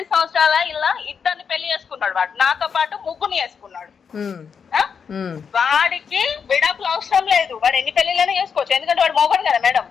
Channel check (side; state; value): right; quieter; 6.5 dB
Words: సంవత్సరాల ఇలా ఇద్దరిని పెళ్లి చేసుకున్నాడు వాడు, నాతో పాటు ముగ్గురిని చేసుకున్నాడు. వాడికి విడాకులు అవసరం లేదు, వాడు ఎన్ని పెళ్లిళ్ళైనా చేసుకోవచ్చు, ఎందుకంటే వాడు మొగడు కదా మేడం.